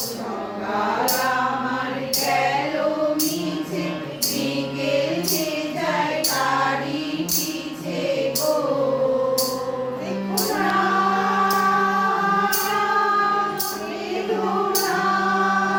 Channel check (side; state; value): both; identical; correlation 1.00